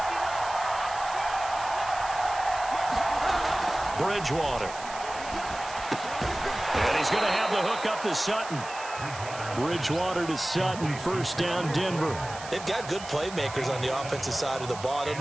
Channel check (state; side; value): noise; right; hiss, 13 dB below the sound